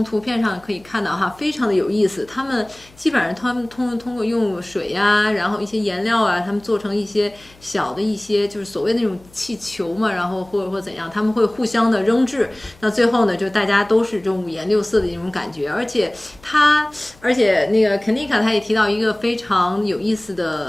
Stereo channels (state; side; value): noise; left; hum, 26 dB below the sound